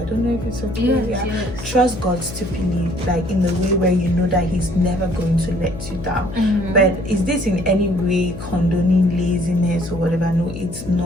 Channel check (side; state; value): left; noise; hum, 11 dB below the sound